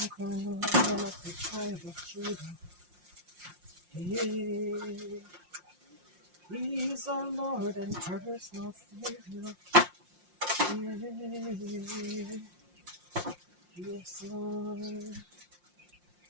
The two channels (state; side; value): late; left; 5.7 ms